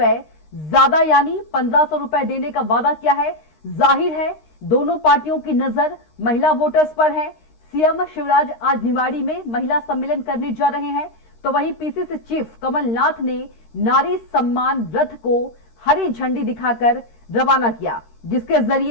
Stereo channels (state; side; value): late; right; 13 ms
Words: ज्यादा यानी 1500 रुपए देने का वादा किया है। जाहिर है दोनों पार्टियों की नजर महिला वोटर्स पर है। सीएम शिवराज आज निवाड़ी में महिला सम्मेलन करने जा रहे हैं, तो वहीं पीसीसी चीफ कमलनाथ ने नारी सम्मान रथ को हरी झंडी दिखाकर रवाना किया, जिसके